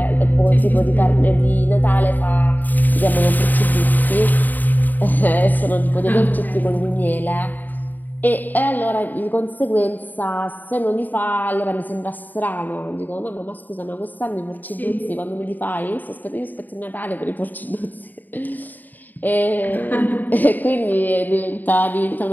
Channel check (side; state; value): right; late; 0.087 ms